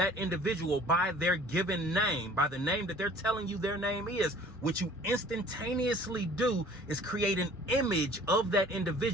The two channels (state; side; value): normal; both; correlation 0.50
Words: individual by their given name, by the name that they're telling you their name is, what you instantaneously do is create an image of that